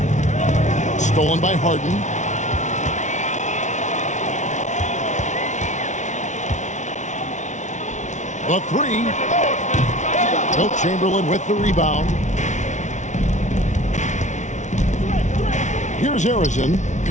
Stolen by Harden. The 3. Wilt Chamberlain with the rebound. Here's Harrison,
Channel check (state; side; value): late; right; 0.35 ms